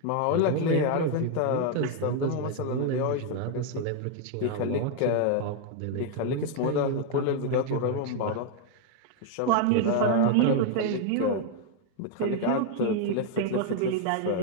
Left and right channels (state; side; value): different; both; correlation 0.00